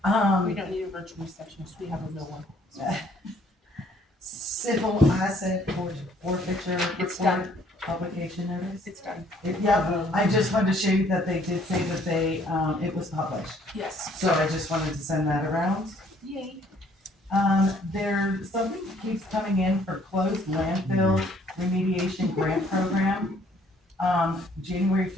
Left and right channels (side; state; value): both; normal; correlation 0.62